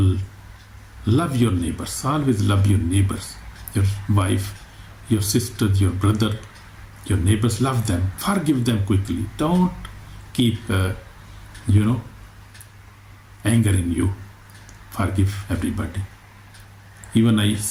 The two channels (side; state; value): both; identical; correlation 1.00